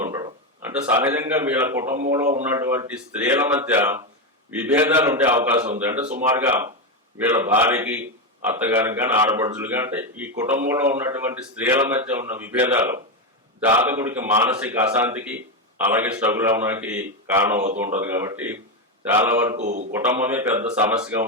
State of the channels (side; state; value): both; normal; correlation 0.10